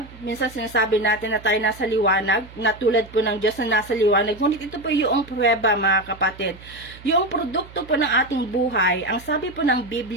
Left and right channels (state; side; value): noise; right; hum, 19 dB below the sound